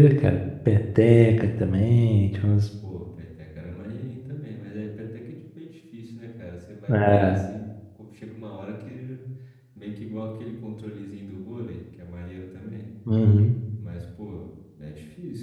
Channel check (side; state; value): both; identical; correlation 1.00